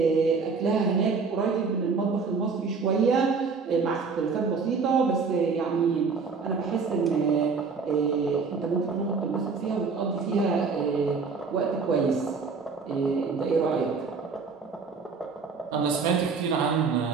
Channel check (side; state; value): left; quieter; 5.0 dB